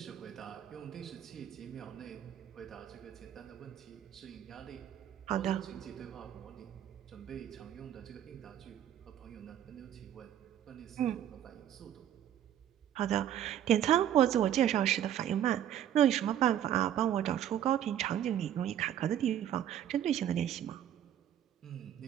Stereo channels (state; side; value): quieter; left; 10.7 dB